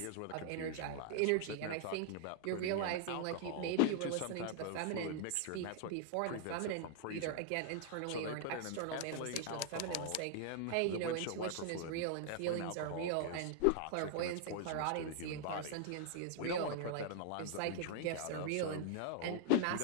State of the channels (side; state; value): both; different; correlation 0.00